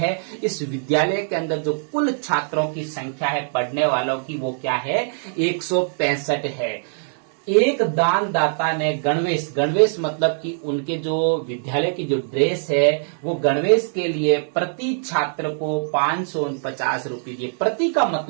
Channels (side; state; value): left; silent; digital silence